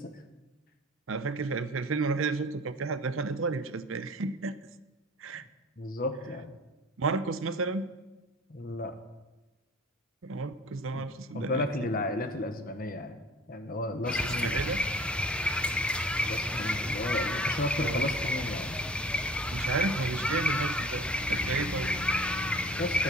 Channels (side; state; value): both; normal; correlation 0.45